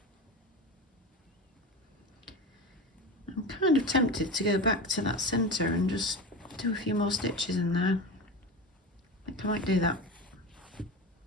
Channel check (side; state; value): both; normal; correlation 0.27